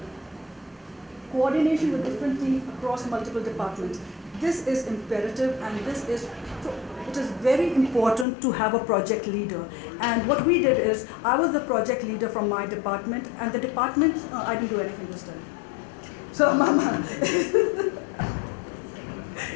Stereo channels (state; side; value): drops out; right; at 8.2 s